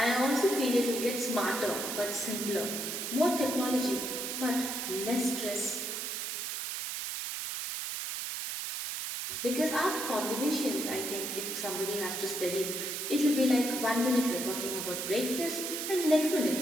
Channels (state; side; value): noise; right; hiss, 4 dB below the sound